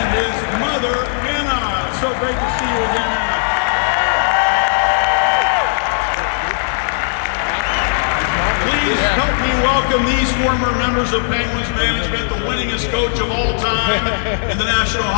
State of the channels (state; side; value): silent; right; digital silence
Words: his mother, Anna. So great to see you again, Anna. Please help me welcome these former members of Penguins management, the winningest coach of all time in the National